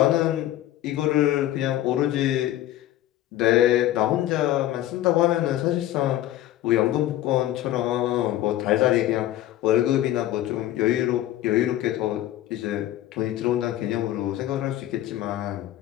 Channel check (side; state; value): right; quieter; 13.6 dB